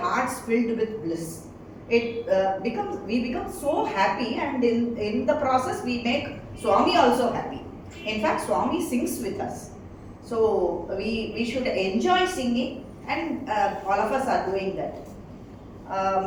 filled with bliss. We become so happy, and in the process we make Swami also happy. In fact, Swami sings with us. So we should enjoy singing, and all of us are doing that.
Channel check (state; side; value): identical; both; correlation 1.00